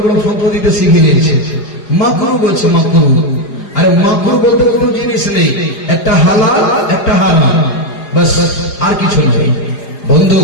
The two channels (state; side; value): late; right; 4.9 ms